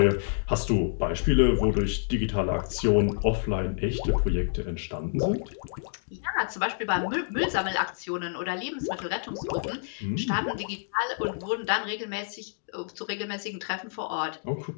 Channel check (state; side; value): silent; right; digital silence